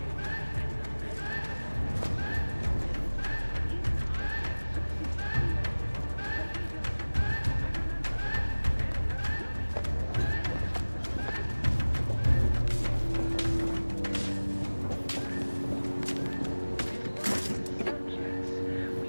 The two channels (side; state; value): both; inverted; correlation -1.00